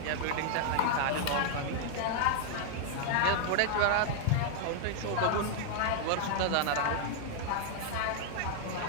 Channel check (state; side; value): different; both; correlation 0.00